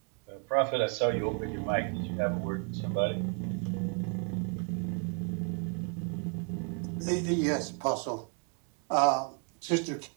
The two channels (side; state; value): left; quieter; 38.0 dB